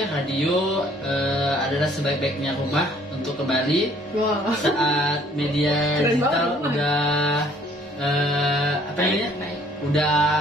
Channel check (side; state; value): both; normal; correlation 0.59